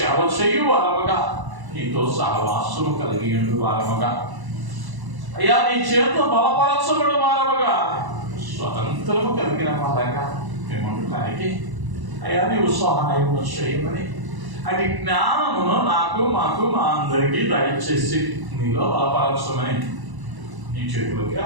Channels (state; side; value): late; left; 1.1 ms